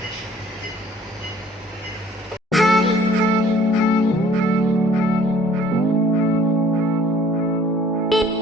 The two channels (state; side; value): normal; both; correlation 0.56